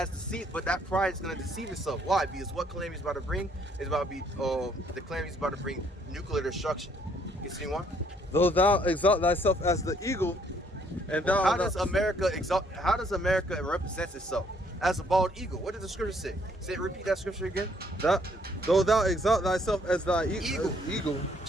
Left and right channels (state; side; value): normal; both; correlation 0.66